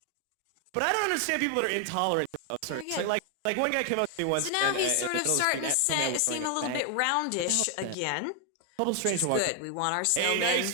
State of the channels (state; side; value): different; both; correlation 0.00